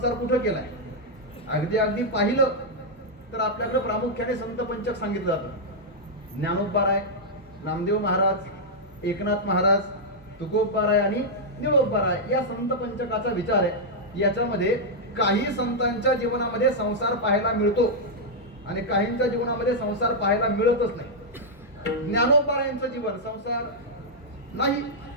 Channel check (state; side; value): normal; both; correlation -0.05